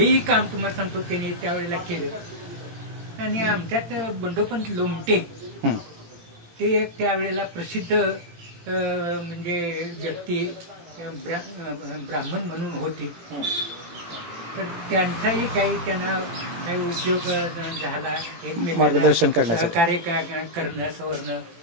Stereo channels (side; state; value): left; late; 18 ms